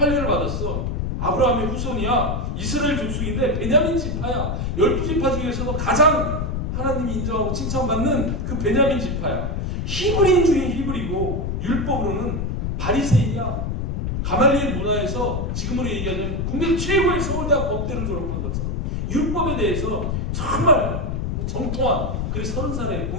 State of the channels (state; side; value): noise; left; rumble, 1 dB below the sound